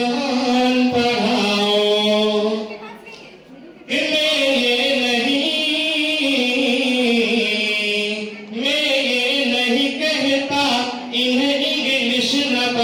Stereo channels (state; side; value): identical; both; correlation 1.00